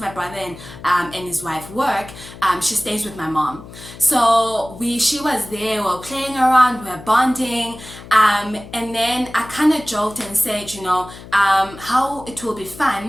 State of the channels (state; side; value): noise; left; hum, 16 dB below the sound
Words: brother and his wife work, she stays with my mom. So she was there, we were playing around, we were bonding, and then I kind of joked and said, how it will be